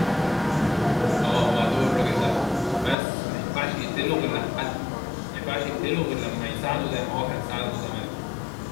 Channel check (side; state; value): right; drops out; at 3.0 s